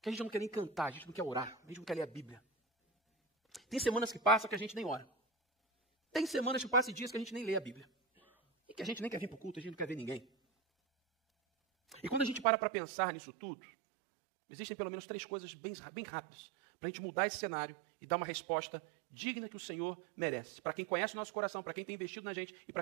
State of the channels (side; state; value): left; drops out; at 12.5 s